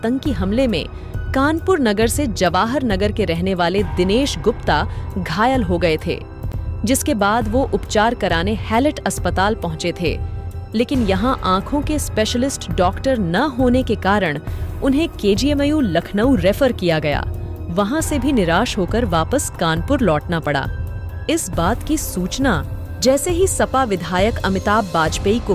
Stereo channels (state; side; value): identical; both; correlation 1.00